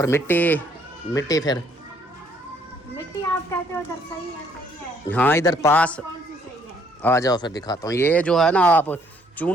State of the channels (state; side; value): normal; both; correlation 0.66